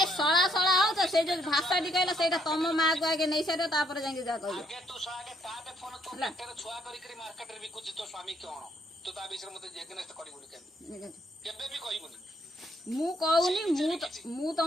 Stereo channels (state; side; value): normal; both; correlation 0.70